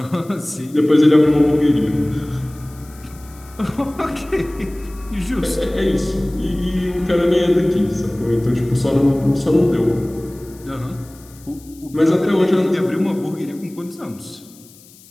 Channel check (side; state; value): left; noise; hiss, 24 dB below the sound